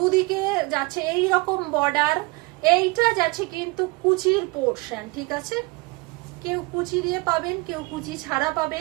যাচ্ছে এই রকম বর্ডার। এইটা যাচ্ছে কিন্তু কুচির পোর্শন, ঠিক আছে, কেউ কুচি দিয়ে পাবেন, কেউ কুচি ছাড়া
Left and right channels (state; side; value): quieter; left; 25.2 dB